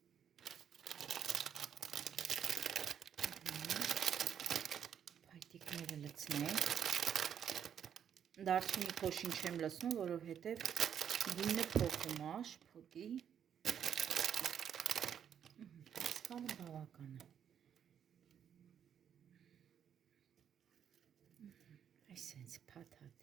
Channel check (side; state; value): left; quieter; 8.6 dB